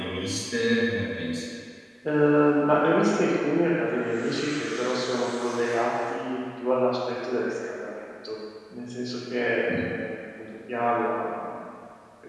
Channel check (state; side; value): identical; both; correlation 1.00